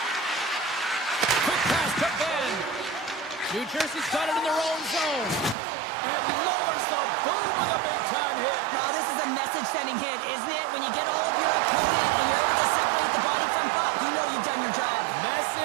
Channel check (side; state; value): left; drops out; at 5.6 s